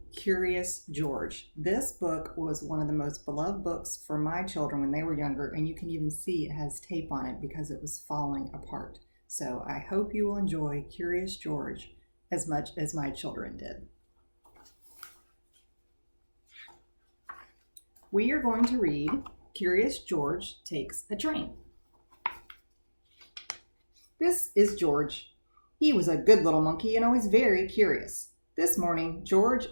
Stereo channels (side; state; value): both; inverted; correlation -1.00